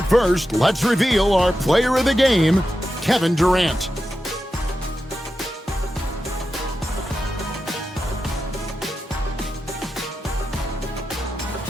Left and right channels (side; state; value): both; normal; correlation 0.90